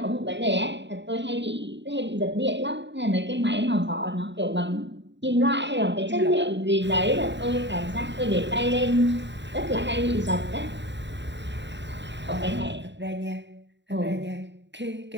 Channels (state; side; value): late; left; 0.52 ms